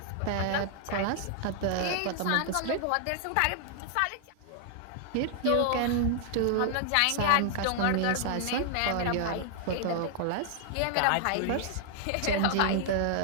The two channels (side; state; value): both; different; correlation 0.00